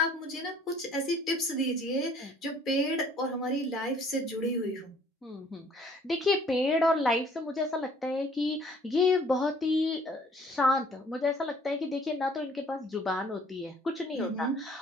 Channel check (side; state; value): both; normal; correlation 0.57